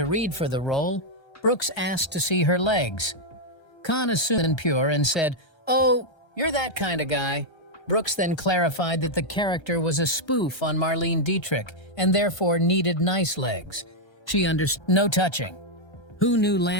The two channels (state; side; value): late; right; 1.3 ms